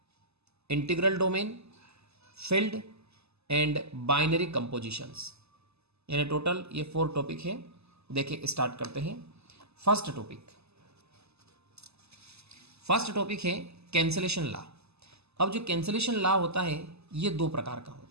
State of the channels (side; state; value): left; late; 0.79 ms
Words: integral domain, field and binary compositions, यानी टोटल ये 4 टॉपिक है। देखिए स्टार्ट करते हैं। फर्स्ट टॉपिक है कैंसिलेशन लॉ। अब जो कैंसिलेशन लॉ होता है ये 2 प्रकार का